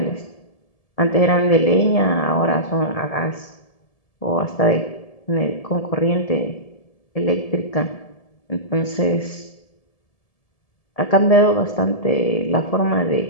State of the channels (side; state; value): right; late; 1.7 ms